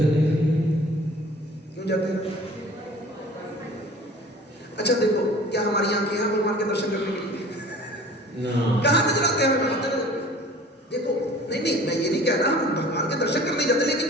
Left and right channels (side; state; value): both; normal; correlation 0.45